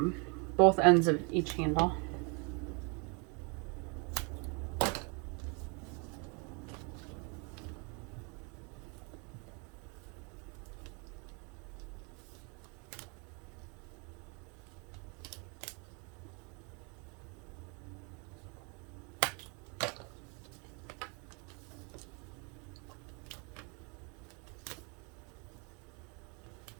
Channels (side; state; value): left; quieter; 33.6 dB